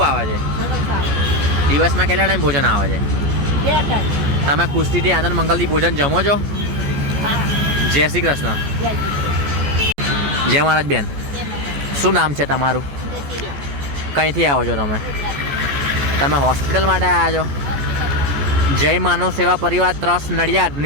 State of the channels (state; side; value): late; left; 14 ms